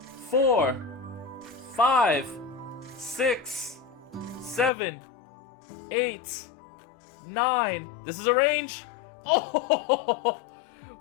4, 5, 6, 7, 8, 9. This is a range. Oh,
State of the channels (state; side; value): drops out; right; at 4.7 s